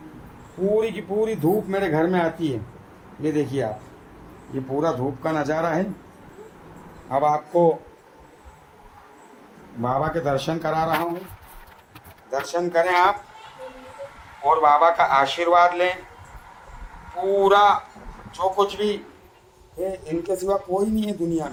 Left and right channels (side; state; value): both; identical; correlation 1.00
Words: पूरी की पूरी धूप मेरे घर में आती है। ये देखिए आप, ये पूरा धूप का नज़ारा है। अब आपको बाबा के दर्शन करा रहा हूँ, दर्शन करें आप और बाबा का आशीर्वाद लें। पूरा जो कुछ भी है, इनके सिवा कोई नहीं है दुनिया